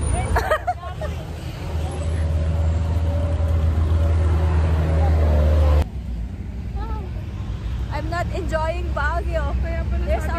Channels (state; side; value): identical; both; correlation 1.00